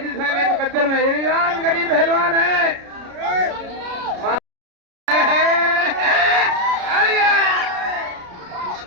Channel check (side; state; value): left; late; 33 ms